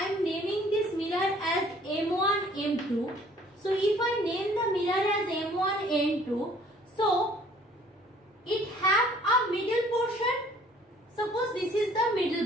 am naming this mirror as M1, M2. So if I name the mirror as M1, M2, so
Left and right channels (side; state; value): both; normal; correlation 0.56